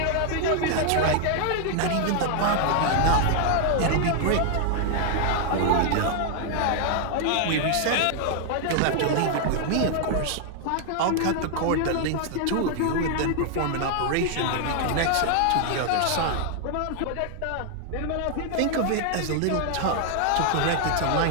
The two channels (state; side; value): different; both; correlation 0.00